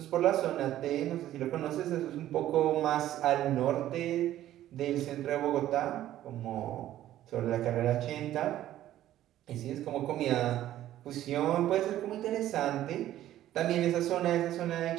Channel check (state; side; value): quieter; left; 13.1 dB